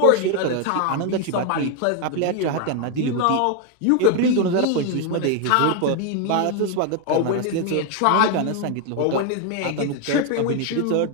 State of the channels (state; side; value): different; both; correlation 0.01